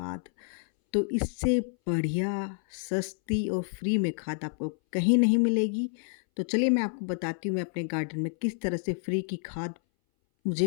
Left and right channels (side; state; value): right; silent; 59 dB below the other